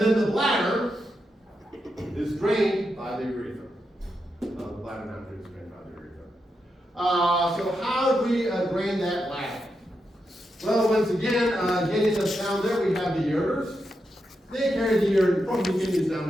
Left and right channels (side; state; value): both; normal; correlation 0.85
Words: the bladder is drained by the urethra. The bladder now is drained by the urethra. So how do we drain that bladder? Well, once again, getting us down there, we have the ureters. They carry the urine from the kidneys down